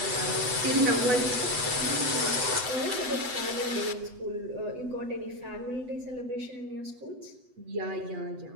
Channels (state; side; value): late; left; 8.0 ms